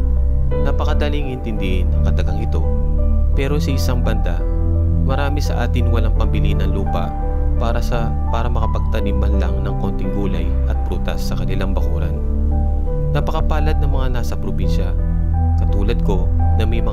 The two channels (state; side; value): identical; both; correlation 1.00